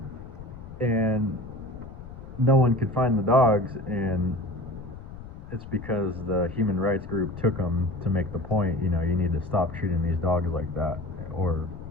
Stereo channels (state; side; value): noise; left; rumble, 14 dB below the sound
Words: And no one could find the dogs, and it's because the human rights group took them to make the point, you know, you need to stop treating these dogs like that, or